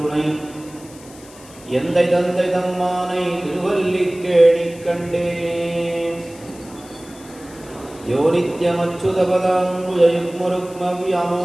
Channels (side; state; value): left; noise; hiss, 21 dB below the sound